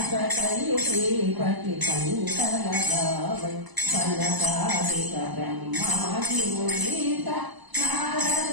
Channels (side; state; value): left; late; 1.0 ms